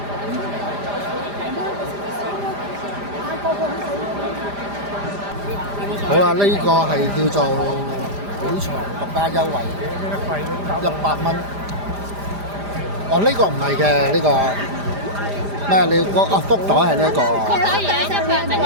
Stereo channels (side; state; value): left; late; 5.0 ms